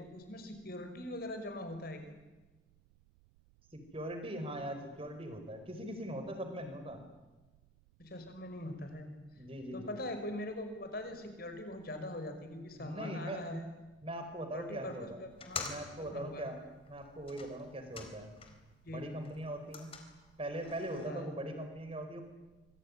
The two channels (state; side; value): noise; right; rumble, 24 dB below the sound